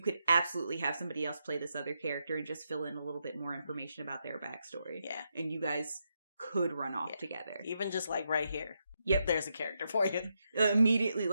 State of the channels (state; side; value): inverted; both; correlation -0.82